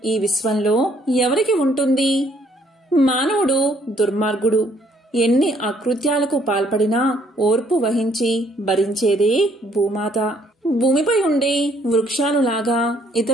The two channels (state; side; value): normal; both; correlation 0.66